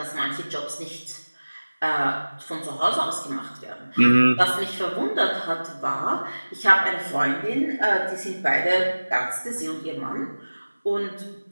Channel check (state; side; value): inverted; both; correlation -1.00